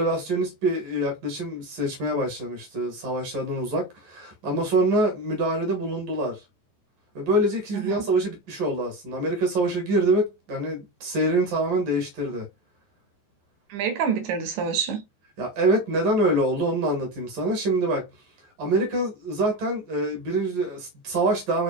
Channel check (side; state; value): left; late; 11 ms